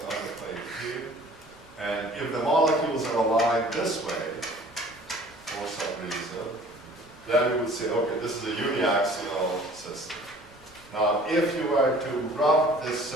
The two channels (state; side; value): noise; left; rumble, 27 dB below the sound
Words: plate here. And if the molecules are aligned this way, for some reason, then we would say, okay, this is a uniaxial system. Now, if you were to rub this